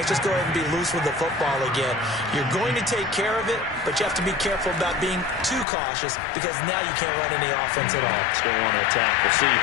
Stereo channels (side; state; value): right; drops out; at 5.7 s